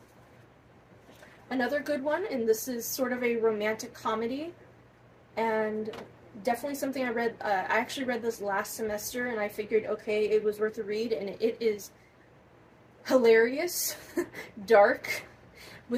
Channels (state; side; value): identical; both; correlation 1.00